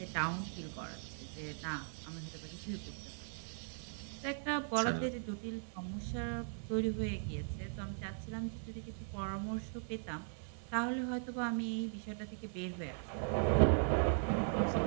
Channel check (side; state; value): left; silent; 52 dB below the other